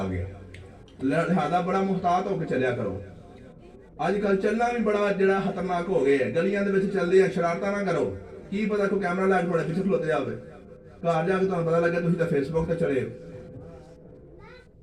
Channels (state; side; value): identical; both; correlation 1.00